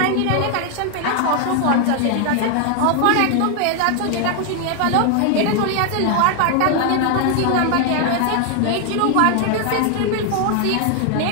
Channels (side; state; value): both; different; correlation 0.00